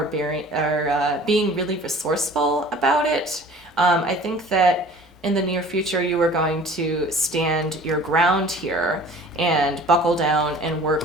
being really resourceful about it. I think that in the near future, you are going to stand your ground here and buckle down and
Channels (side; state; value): both; normal; correlation 0.47